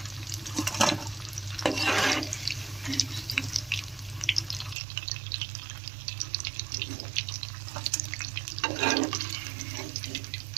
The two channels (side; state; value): left; drops out; at 4.8 s